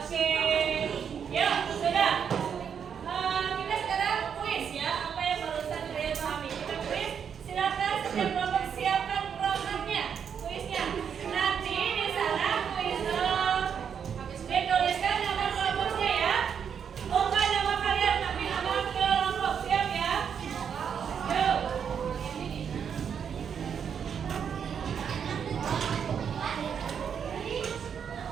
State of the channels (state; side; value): quieter; left; 7.5 dB